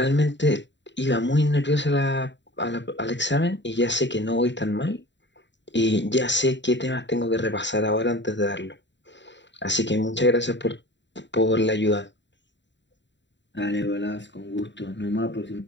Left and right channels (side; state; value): right; late; 0.52 ms